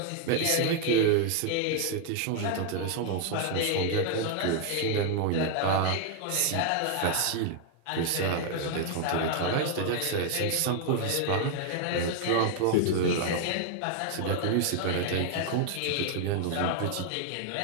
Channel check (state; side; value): different; both; correlation 0.00